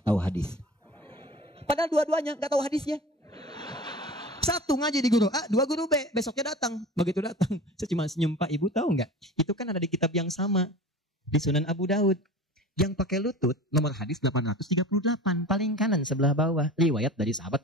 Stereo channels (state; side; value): normal; both; correlation 0.37